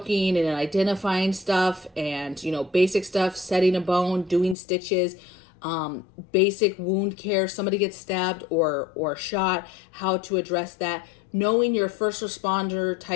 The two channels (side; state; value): right; drops out; at 4.5 s